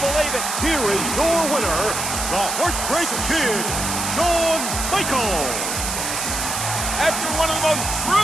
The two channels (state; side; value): noise; right; hiss, 3 dB below the sound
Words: it. Here is your winner, the Heartbreak Kid, Shawn Michaels. After one of the most